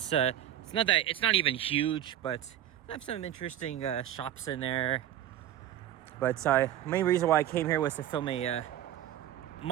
not even huge, but I have some interesting shops in there. But main reason why I came here was to film a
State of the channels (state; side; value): quieter; left; 11.9 dB